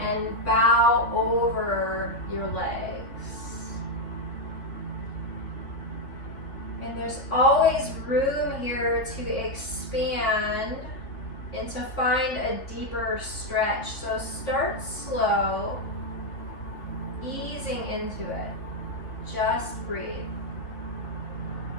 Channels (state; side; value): late; right; 3.3 ms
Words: bow over your legs. And there's always room here to expand and to find a deeper stretch. So start slow, easing into it. Just breathe.